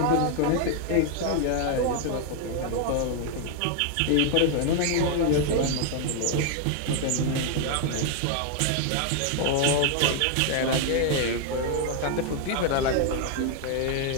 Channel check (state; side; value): different; both; correlation 0.00